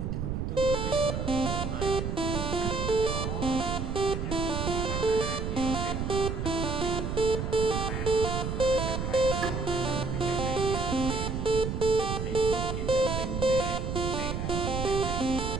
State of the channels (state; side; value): noise; right; rumble, 2 dB below the sound